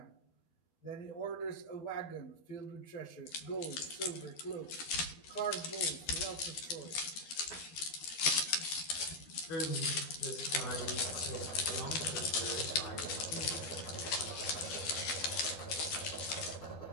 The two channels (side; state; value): right; late; 12 ms